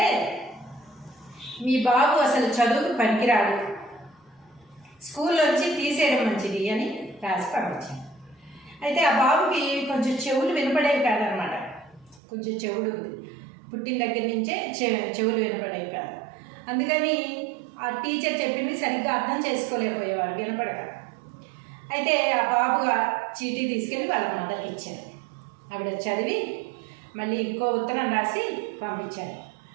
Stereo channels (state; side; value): drops out; left; at 12.2 s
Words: మీ బాబు అసలు చదువుకు పనికిరాడు, స్కూల్లోంచి తీసేయడం మంచిది అని రాసి పంపించారు. అయితే ఆ బాబుకి కొంచెం చెవులు వినపడేవి కాదనమాట. కొంచెం చెవుడు ఉంది, పుట్టిన దగ్గర నుంచే చెవులు వినపడేవి కాదు. అందుకని ఆ టీచర్ చెప్పింది సరిగ్గా అర్థం చేసుకోలేకపోయేవాడు వినపడక. అయితే ఆ బాబు చీటీ తీసుకెళ్ళి వాళ్ళ మదర్కి ఇచ్చారు. ఆవిడ చదివి మళ్ళీ ఇంకో ఉత్తరం రాసి పంపించారు.